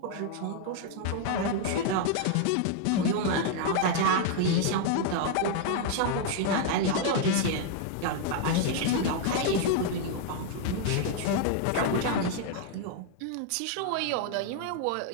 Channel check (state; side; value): different; both; correlation 0.00